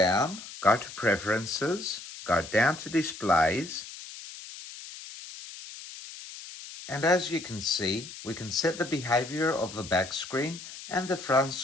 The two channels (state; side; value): noise; left; hiss, 13 dB below the sound